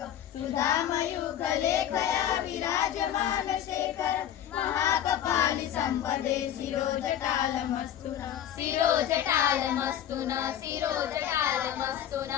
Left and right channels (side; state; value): right; quieter; 10.6 dB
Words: सुधामयूखलेखया विराजमान शेखर महाकपालि सम्पदे शिरोजटालमस्तु न शिरोजटालमस्तु न शिरोजटालमस्तु